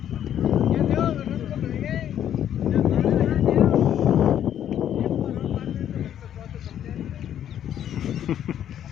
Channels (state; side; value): quieter; right; 10.3 dB